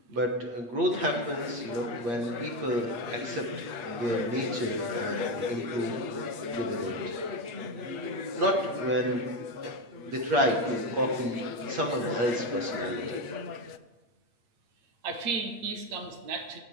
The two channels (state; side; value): late; left; 8.5 ms